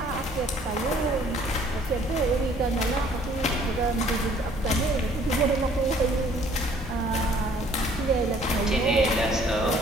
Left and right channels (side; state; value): both; normal; correlation 0.58